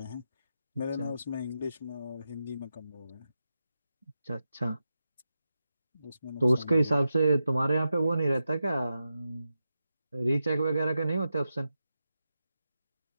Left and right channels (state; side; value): inverted; both; correlation -0.89